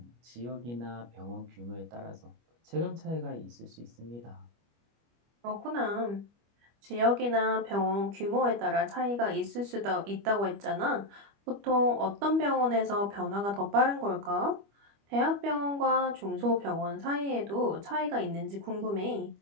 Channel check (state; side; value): late; left; 25 ms